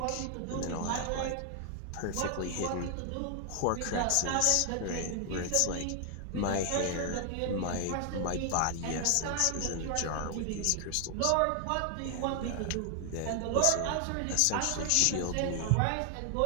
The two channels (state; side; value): different; both; correlation 0.00